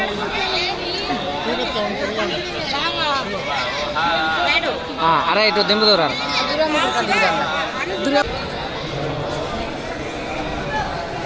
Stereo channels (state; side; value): identical; both; correlation 1.00